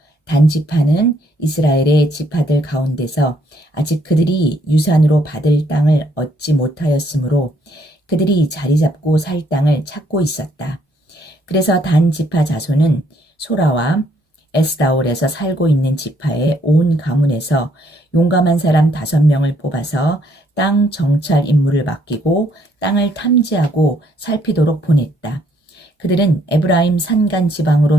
단 지파는 이스라엘의 지파들 가운데서 아직 그들이 유산으로 받을 땅을 얻지 못하였으므로 그들이 자리 잡고 살 땅을 찾고 있었다. 그래서 단 지파 자손은 소라와 에스다올에서 살고 있는 지파의 온 가문에서 용감한 사람 5명을 뽑아서 땅 정찰 임무를 맡기고 땅을 탐지하고 살피도록 보냈다. 그들은 에브라임 산간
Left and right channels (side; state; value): both; normal; correlation 0.68